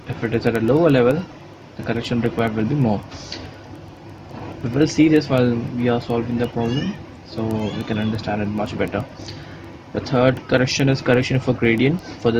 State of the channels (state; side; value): identical; both; correlation 1.00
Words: if it is at a lower level, the correction required will be more. We will see this while we are solving the problem, so we can understand it much better. The third correction is correction for gradient. For